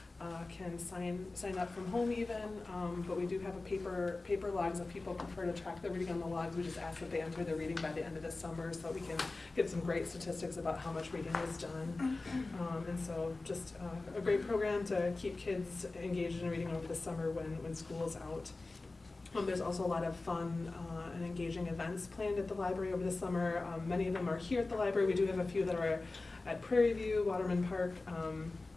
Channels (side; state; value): right; quieter; 3.3 dB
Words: can sign up from home even, but we do have a paper logs if people prefer to track the reading on the logs. We just ask that they enter their reading by the end of the summer so that we can get some great statistics about how much reading is done. And so just a great program to keep kids engaged in reading over the summer when school's out. There's also a lot of fun and engaging events planned at the library over the summer. Many of them are here at the library. We do have a few that are at Prairie View, Waterman Park,